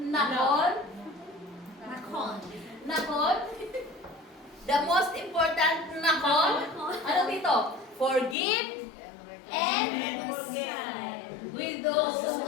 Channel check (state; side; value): drops out; right; at 8.3 s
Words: Nakon. Nakon. The most important nakon. Ano dito? Forgive and with those who